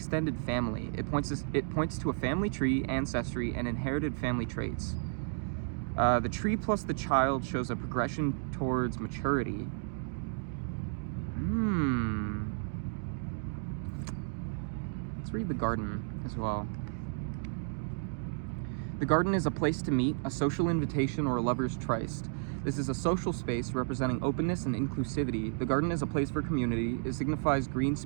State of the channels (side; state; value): left; silent; digital silence